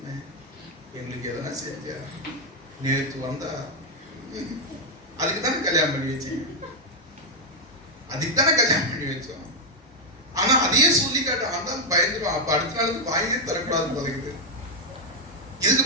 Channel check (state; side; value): normal; both; correlation 0.02